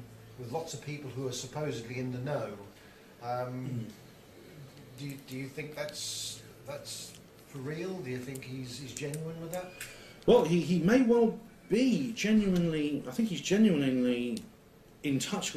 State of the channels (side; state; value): both; identical; correlation 1.00